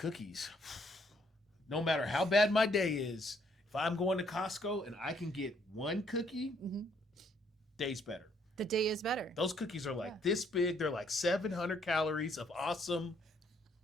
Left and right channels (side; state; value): both; normal; correlation 0.68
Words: no matter how bad my day is, if I'm going to Costco and I can get 1 cookie, day's better. The day is better. Those cookies are like this big. They're like 700 calories of awesome.